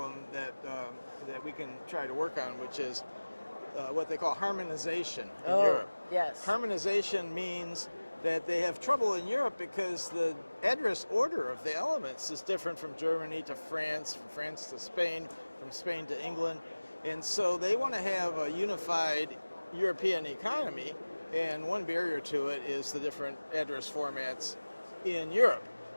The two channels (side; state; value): both; inverted; correlation -1.00